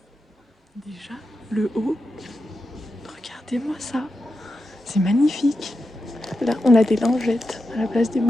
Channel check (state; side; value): normal; both; correlation 0.89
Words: Déjà le haut, regardez-moi ça, c'est magnifique. Là on a des lingettes à la place des